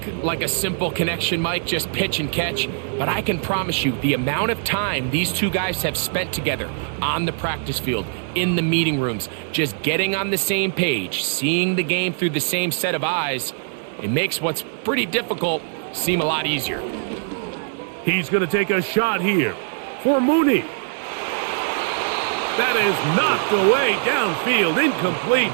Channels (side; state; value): left; silent; digital silence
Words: like a simple connection, Mike, just pitch and catch, but I can promise you the amount of time these two guys have spent together on the practice field, in the meeting rooms, just getting on the same page, seeing the game through the same set of eyes, it makes what's pretty difficult seem a lot easier. He's going to take a shot here for Mooney. That is knocked away downfield, incomplete.